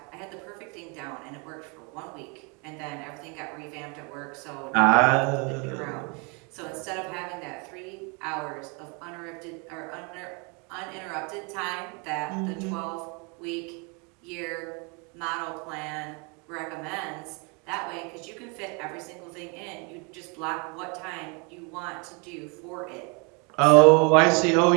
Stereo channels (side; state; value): left; quieter; 32.6 dB